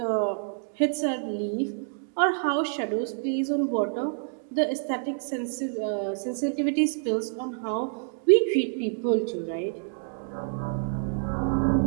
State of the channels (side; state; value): left; silent; digital silence